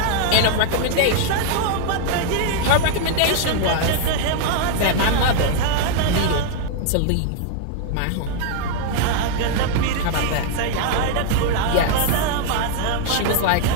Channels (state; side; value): different; both; correlation 0.00